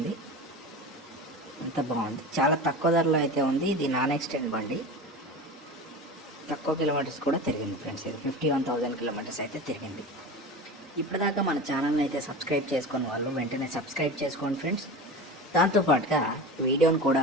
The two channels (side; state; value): both; normal; correlation 0.30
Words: అంత బాగుంది. చాలా తక్కువ ధరలో అయితే ఉంది. ఇది నాన్ ఎక్స్టెండ్ బండి. తక్కువ కిలోమీటర్స్ కూడా తిరిగింది ఫ్రెండ్స్. ఇది 51,000 కిలోమీటర్స్ అయితే తిరిగింది. ఇప్పటిదాకా మన ఛానల్ని అయితే సబ్స్క్రైబ్ చేసుకుని వాళ్ళు వెంటనే సబ్స్క్రైబ్ చేసుకోండి ఫ్రెండ్స్. దాంతోపాటుగా వీడియోని